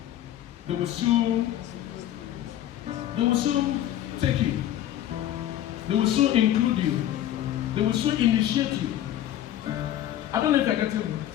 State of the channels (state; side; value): quieter; right; 12.2 dB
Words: They will soon take you. They will soon include you. They will soon initiate you. I don't know if I get it.